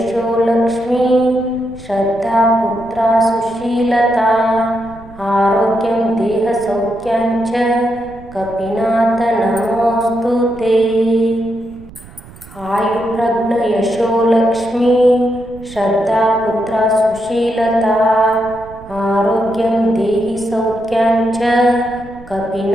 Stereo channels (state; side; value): noise; right; rumble, 20 dB below the sound